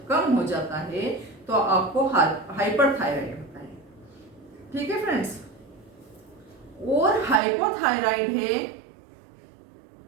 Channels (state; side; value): drops out; left; at 7.4 s